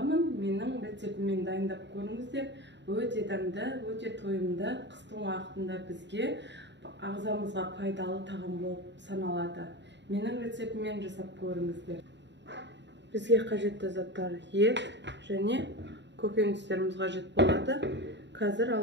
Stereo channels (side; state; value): left; late; 0.52 ms